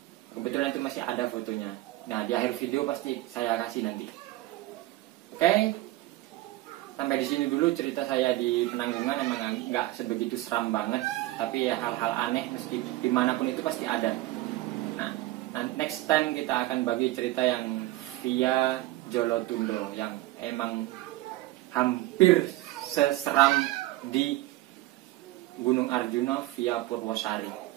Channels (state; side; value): quieter; left; 17.3 dB